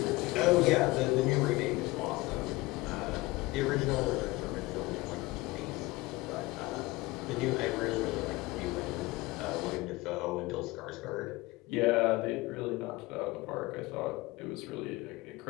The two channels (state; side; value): quieter; right; 21.1 dB